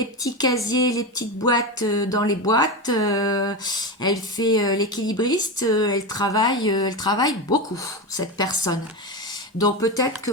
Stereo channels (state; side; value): normal; both; correlation 0.18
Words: petits casiers, les petites boîtes dans les boîtes. Elle fait l'équilibriste. Elle travaille beaucoup, cette personne. Donc, peut-être que